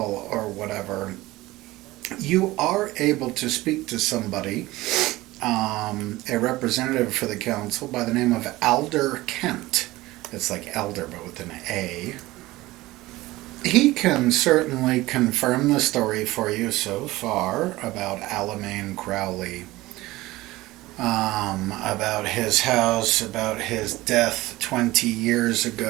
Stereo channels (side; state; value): left; quieter; 18.7 dB